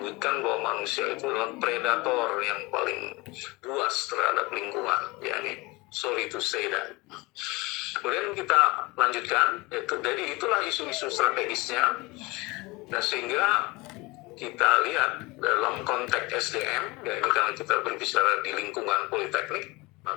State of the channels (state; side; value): quieter; right; 23.8 dB